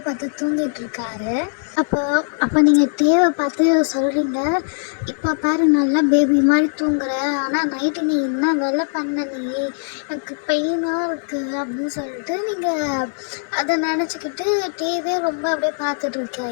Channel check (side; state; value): right; silent; digital silence